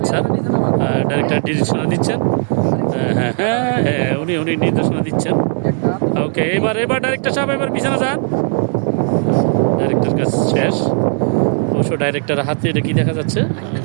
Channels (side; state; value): left; silent; 60 dB below the other